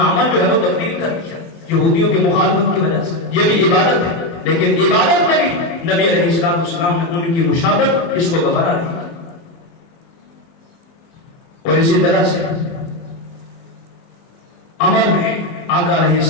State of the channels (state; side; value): late; right; 24 ms